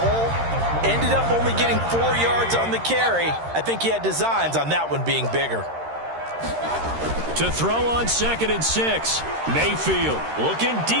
Ended up only getting 4 yards on the carry. I think he had designs on that one being bigger. To throw on 2nd and 6. Mayfield looking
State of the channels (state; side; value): late; left; 13 ms